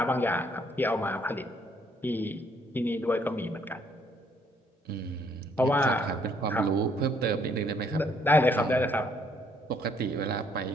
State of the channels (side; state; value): both; normal; correlation 0.66